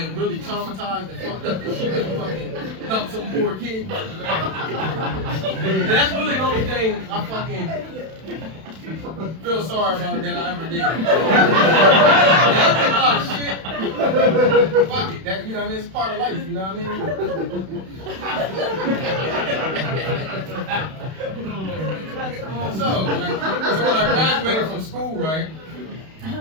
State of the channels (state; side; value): late; left; 31 ms